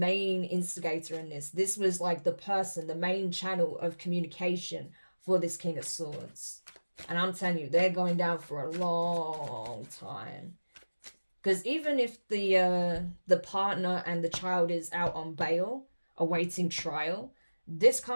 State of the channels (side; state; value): both; inverted; correlation -1.00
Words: instigator in this. This was like the person, the main channel of communication for this King of Swords. And I'm telling you, they're going down for a long time. Because even if the partner and the child is out on bail, awaiting trial, this